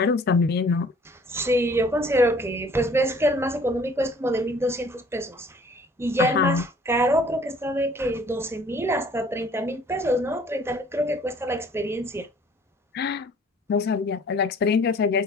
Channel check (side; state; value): both; normal; correlation 0.54